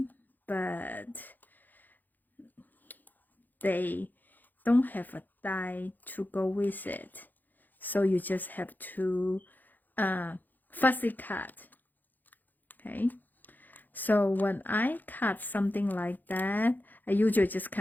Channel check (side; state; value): right; late; 0.086 ms